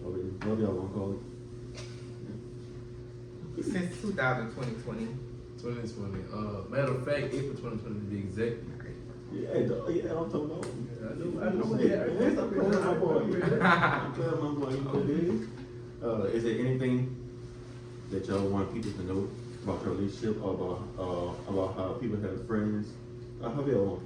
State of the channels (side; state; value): both; identical; correlation 1.00